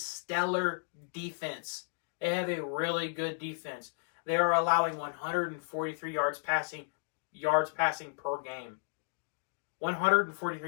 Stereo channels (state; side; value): silent; right; digital silence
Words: defense. They have a really good defense. They are allowing 143 yards passing per game.